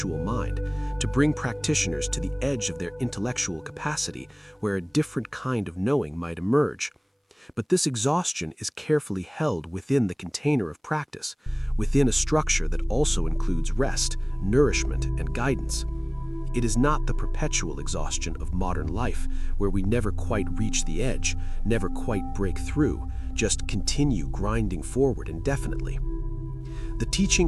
mind, to bring practitioners to the edge of their intellectual capacity where a different kind of knowing might emerge. But this exhaustion is carefully held within the container of practice, within a structure that also includes rest, nourishment, and guidance. It is not the perpetual exhaustion of modern life, where we never quite reach the edge, never quite break through, just continue grinding forward indefinitely. The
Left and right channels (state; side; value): identical; both; correlation 1.00